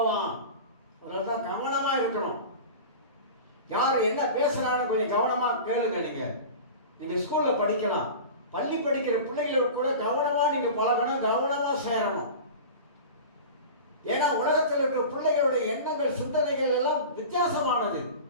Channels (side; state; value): both; inverted; correlation -0.33